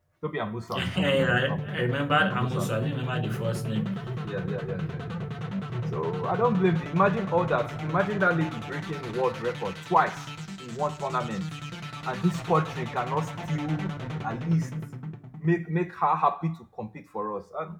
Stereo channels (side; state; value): both; identical; correlation 1.00